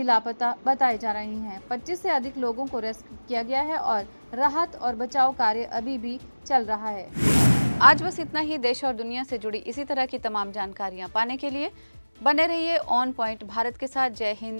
लापता बताए जा रहे हैं। 25 से अधिक लोगों को रेस्क्यू किया गया है और राहत और बचाव कार्य अभी भी चल रहा है। आज बस इतना ही। देश और दुनिया से जुड़ी इसी तरह की तमाम जानकारियां पाने के लिए बने रहिए ऑन पॉइंट भारत के साथ। जय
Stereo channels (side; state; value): both; inverted; correlation -1.00